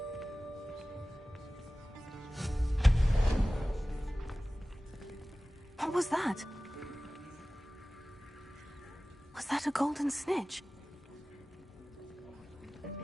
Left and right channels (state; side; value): normal; both; correlation 0.97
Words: What was that? Was that a golden snitch?